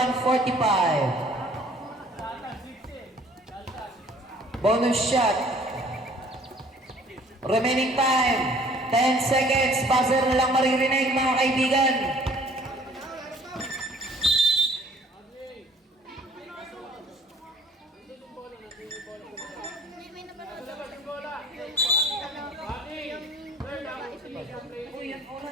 Bonus shot. Remaining time, 10 seconds. Buzzer na lang maririnig mga kaibigan. May napanood ako sa yung babae sumigaw. Magninis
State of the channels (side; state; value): both; normal; correlation 0.55